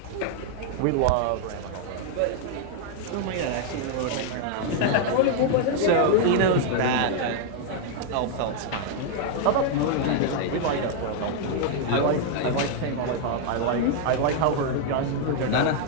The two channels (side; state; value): both; different; correlation 0.00